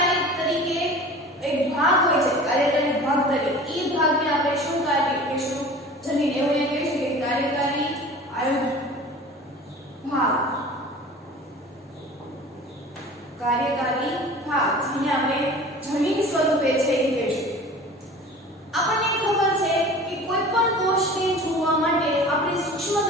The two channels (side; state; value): both; normal; correlation 0.41